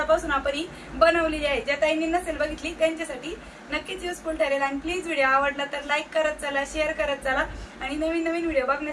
आपण ही बनवलेली आहे। ज्या ताईंनी नसेल बघितली त्यांच्यासाठी नक्कीच युजफुल ठरेल। आणि प्लीज व्हिडिओ आवडला तर लाईक करत चला, शेअर करत चला आणि नवीन व्हिडिओ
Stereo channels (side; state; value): both; identical; correlation 1.00